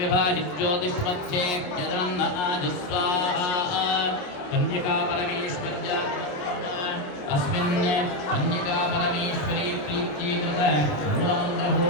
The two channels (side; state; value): right; late; 27 ms